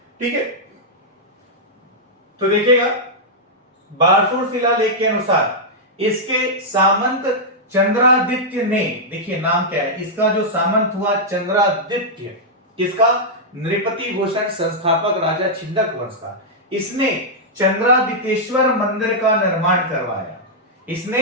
ठीक है, तो देखिएगा बारसूर शिलालेख के अनुसार इसके सामंत चंद्रादित्य ने, देखिए नाम क्या है इसका, जो सामंत हुआ चंद्रादित्य, किसका? नृपति भूषण संस्थापक राजा छिंदक वंश का। इसने चंद्रादितेश्वर मंदिर का निर्माण करवाया।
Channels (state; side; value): normal; both; correlation -0.07